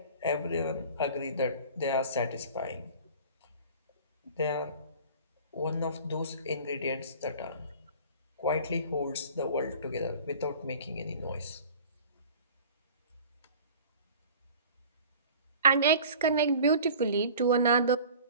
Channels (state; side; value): inverted; both; correlation -0.43